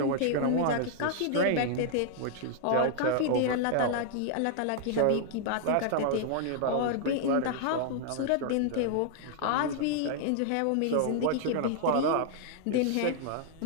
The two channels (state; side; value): different; both; correlation -0.01